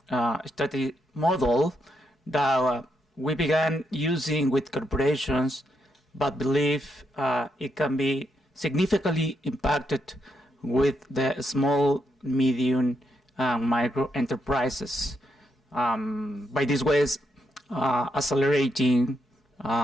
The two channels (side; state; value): both; normal; correlation 0.80